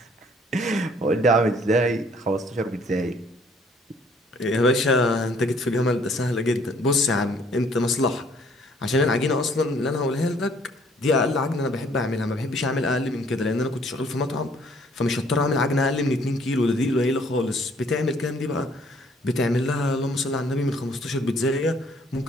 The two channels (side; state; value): both; normal; correlation 0.61